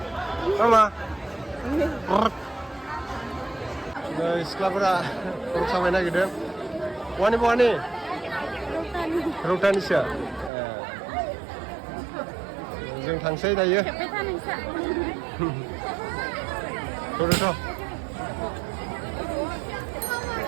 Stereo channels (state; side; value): drops out; left; at 10.5 s